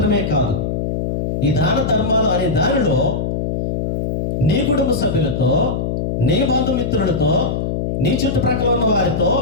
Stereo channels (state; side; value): noise; left; hum, 1 dB below the sound